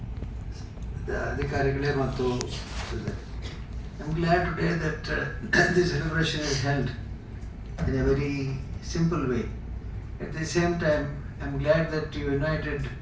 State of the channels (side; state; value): both; identical; correlation 1.00